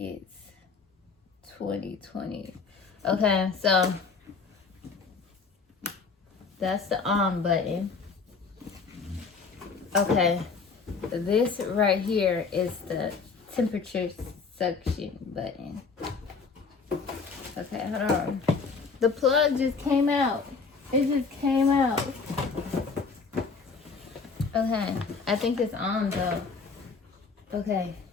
2020. Okay, so that's the on button. Okay, this right here is the temperature suction button. Okay, hold on. The plug just came out. It just came out. Okay, I think it's on though. Okay.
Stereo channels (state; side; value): quieter; right; 4.8 dB